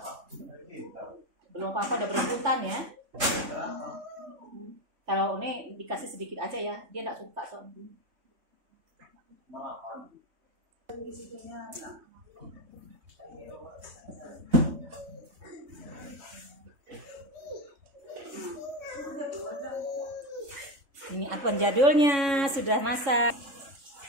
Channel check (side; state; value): left; late; 3.6 ms